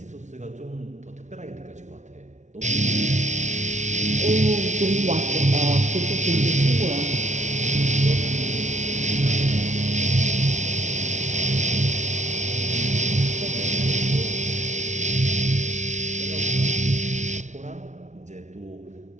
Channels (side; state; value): left; late; 0.35 ms